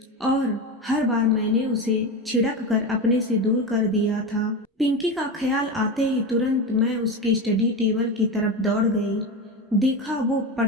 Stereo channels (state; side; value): normal; both; correlation 0.21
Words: और हर बार मैंने उसे छिड़क कर अपने से दूर कर दिया था। पिंकी का ख्याल आते ही तुरंत मैं उसके स्टडी टेबल की तरफ दौड़ गई। देखा वो